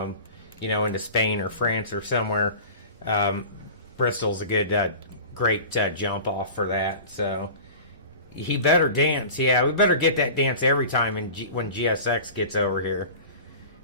into Spain or France or somewhere. Bristol's a good, great jump off for that. So he better dance. Yeah, we better get that dance every time when GSX gets over here.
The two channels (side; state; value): both; inverted; correlation -0.37